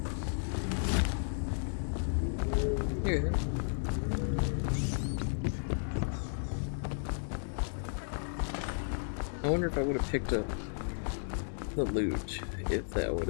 Here. I wonder if I would have picked up the loot if that would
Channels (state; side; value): silent; right; digital silence